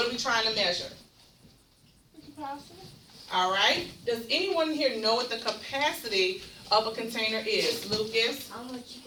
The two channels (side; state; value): both; identical; correlation 1.00